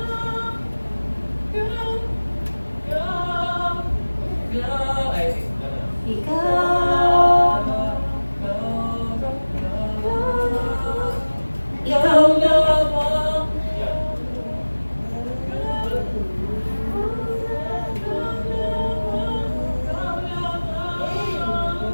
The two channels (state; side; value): inverted; both; correlation -1.00